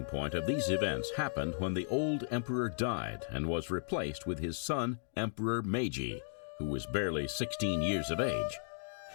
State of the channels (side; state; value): right; silent; digital silence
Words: point of these events happened when the old emperor died and was replaced with his son, Emperor Meiji, who was barely 16 years of age.